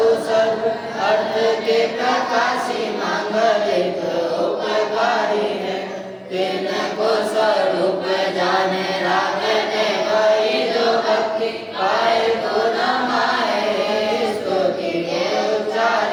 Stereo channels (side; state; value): both; identical; correlation 1.00